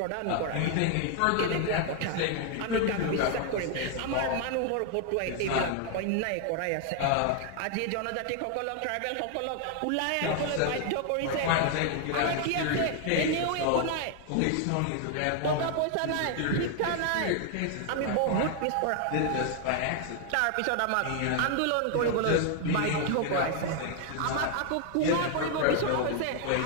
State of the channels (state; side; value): different; both; correlation 0.00